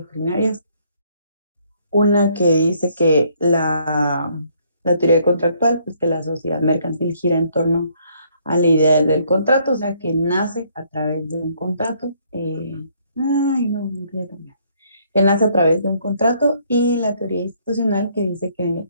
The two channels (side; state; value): both; inverted; correlation -0.66